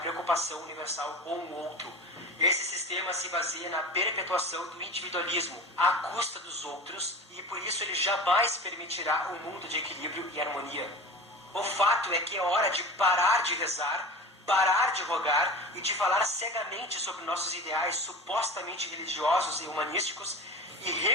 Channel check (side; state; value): both; normal; correlation 0.34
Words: universal com o outro. Esse sistema se baseia na perpetuação do individualismo à custa dos outros e por isso ele jamais permitirá um mundo de equilíbrio e harmonia. O fato é que é hora de parar de rezar, parar de rogar e de falar cegamente sobre nossos ideais supostamente religiosos e humanísticos e